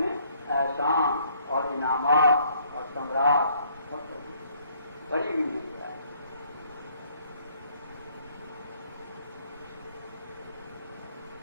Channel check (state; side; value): inverted; both; correlation -0.64